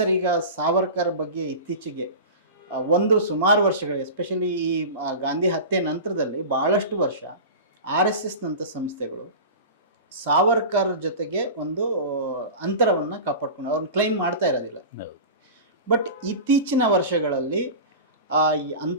ಈಗ ಸಾವರ್ಕರ್ ಬಗ್ಗೆ ಇತ್ತೀಚೆಗೆ ಸುಮಾರು ವರ್ಷಗಳು, ಎಸ್ಪೆಷಲಿ ಈ ಗಾಂಧಿ ಹತ್ಯೆ ನಂತರದಲ್ಲಿ ಭಾಳಷ್ಟು ವರ್ಷ RSSನಂಥ ಸಂಸ್ಥೆಗಳು ಸಾವರ್ಕರ್ ಜೊತೆಗೆ ಒಂದು ಅಂತರವನ್ನು ಕಾಪಾಡ್ಕೊಂಡು ಅವ್ರನ್ನ ಕ್ಲೈಮ್ ಮಾಡ್ತಾ ಇರೋದಿಲ್ಲ. ಬಟ್ ಇತ್ತೀಚಿನ ವರ್ಷಗಳಲ್ಲಿ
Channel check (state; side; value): inverted; both; correlation -0.30